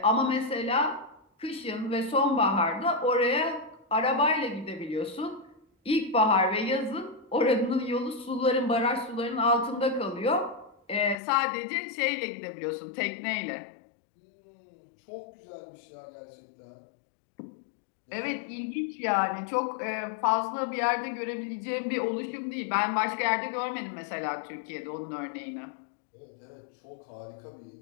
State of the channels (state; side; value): drops out; right; at 11.2 s